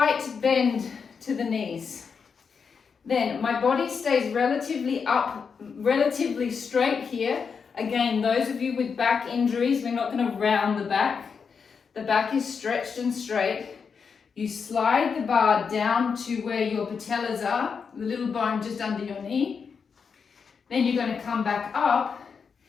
bend to the knees. Then my body stays relatively up, relatively straight here. Again, those of you with back injuries, we're not going to round the back. The back is stretched and straight. You slide the bar down to where your patellas are, the little bone just under your knee. Then you're going to come back up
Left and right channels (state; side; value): quieter; right; 5.9 dB